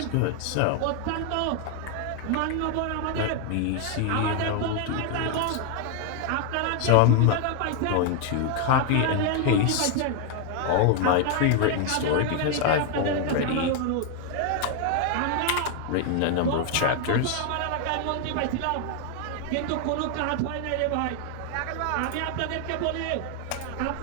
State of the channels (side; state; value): both; different; correlation 0.00